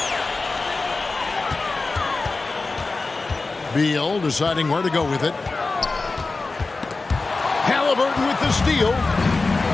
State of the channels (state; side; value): quieter; right; 3.7 dB